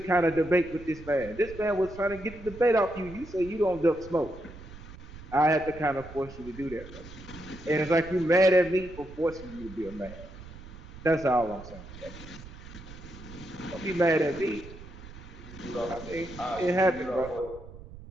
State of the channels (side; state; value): right; noise; rumble, 16 dB below the sound